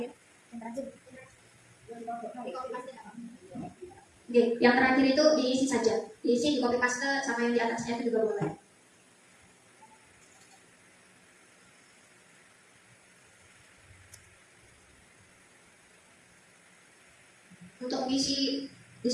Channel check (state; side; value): identical; both; correlation 1.00